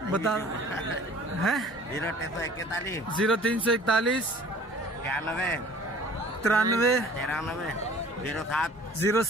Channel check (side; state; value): both; normal; correlation 0.49